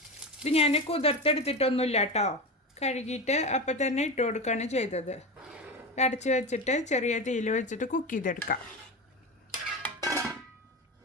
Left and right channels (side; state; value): both; normal; correlation 0.22